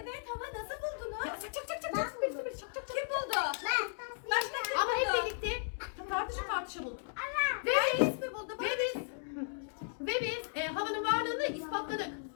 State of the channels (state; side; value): silent; right; digital silence